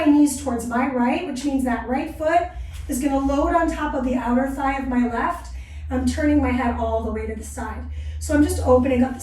knees towards my right, which means that right foot is going to load on top of the outer thigh of my left. I'm turning my head all the way to the side. So I'm just opening up the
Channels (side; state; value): both; identical; correlation 1.00